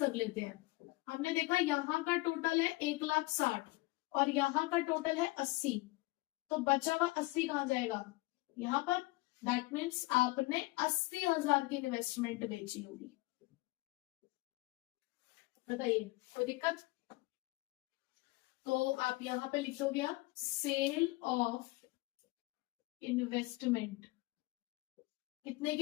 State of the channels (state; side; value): quieter; right; 21.8 dB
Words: लेते हैं। हमने देखा यहाँ का टोटल है 1,60,000 और यहाँ का टोटल है 80, तो बचा हुआ 80 कहाँ जाएगा? यहाँ पर। दैट मीन्स आपने 80,000 की इन्वेस्टमेंट बेची होगी। बताइए कोई दिक्कत? तो आप यहां पे लिख दोगे सेल ऑफ इन्वेस्टमेंट। कितने